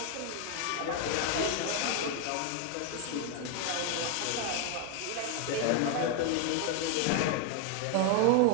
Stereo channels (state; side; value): different; both; correlation 0.01